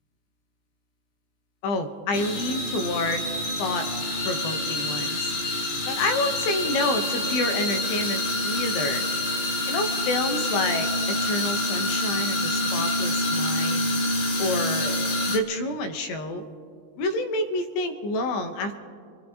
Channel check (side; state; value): right; late; 20 ms